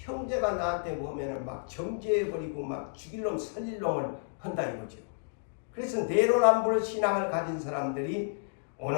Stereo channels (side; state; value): right; silent; digital silence